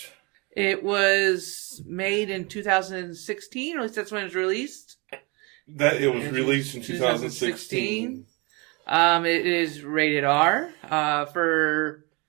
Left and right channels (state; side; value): quieter; left; 28.8 dB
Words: It was made in 2016, or at least that's when it was released. That it was released in 2016. It is rated R for